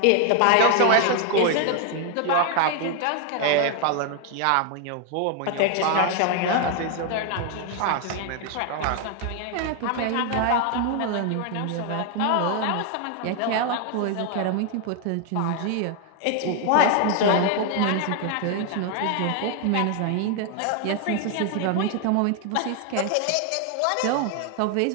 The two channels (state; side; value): different; both; correlation 0.00